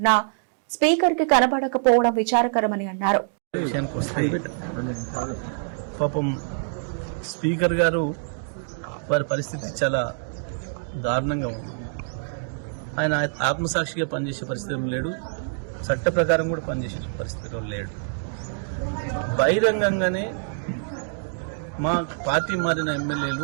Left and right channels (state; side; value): silent; left; digital silence